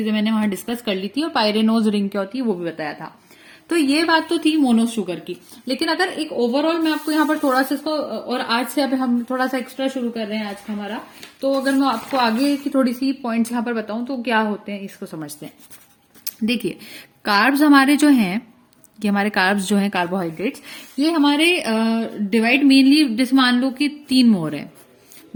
मैंने वहां डिस्कस कर ली थी। और पायरेनोज रिंग क्या होती है वो भी बताया था। तो ये बात तो थी मोनो शुगर की। लेकिन अगर एक ओवरऑल मैं आपको यहाँ पर थोड़ा सा इसको, और आज से अब हम थोड़ा सा एक्स्ट्रा शुरू कर रहे हैं आज का हमारा, तो अगर मैं आपको आगे की थोड़ी सी पॉइंट्स यहाँ पर बताऊं तो क्या होते हैं इसको समझते हैं। देखिए, कार्ब्स हमारे जो हैं, ये हमारे कार्ब्स जो हैं कार्बोहाइड्रेट्स, ये हमारे डिवाइड मेनली जैसे मान लो कि 3 मोर है।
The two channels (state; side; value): identical; both; correlation 1.00